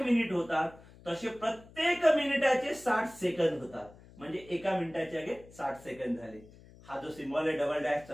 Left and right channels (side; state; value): left; noise; hum, 22 dB below the sound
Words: मिनिट होतात, तसे प्रत्येक मिनिटाचे 60 सेकंद होतात. म्हणजे एका मिनिटाचे आगे 60 सेकंद झाले. हा जो सिम्बॉल आहे डबल